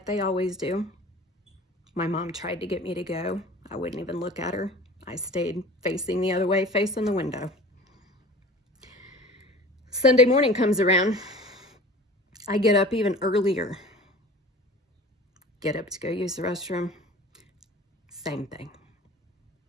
they always do. My mom tried to get me to go. I wouldn't even look at her. I stayed facing the other way, facing the window. Sunday morning comes around. I get up even earlier. Get up to go use the restroom. Same thing.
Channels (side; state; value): both; normal; correlation 0.41